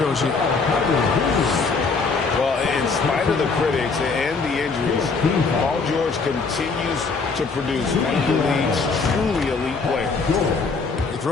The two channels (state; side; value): quieter; right; 4.5 dB